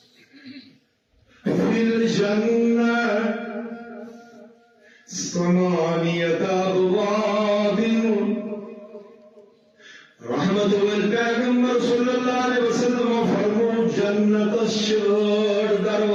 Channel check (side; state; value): both; identical; correlation 1.00